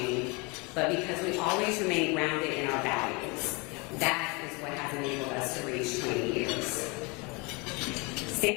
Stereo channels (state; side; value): quieter; right; 28.7 dB